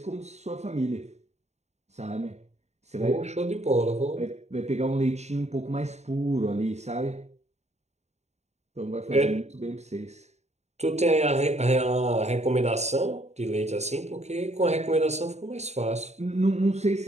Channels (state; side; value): late; left; 0.32 ms